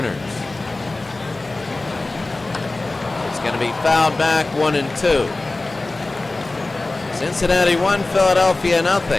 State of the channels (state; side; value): quieter; right; 3.1 dB